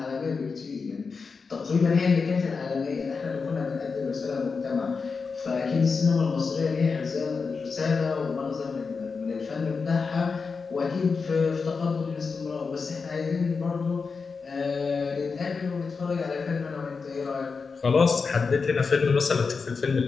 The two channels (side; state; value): right; quieter; 4.9 dB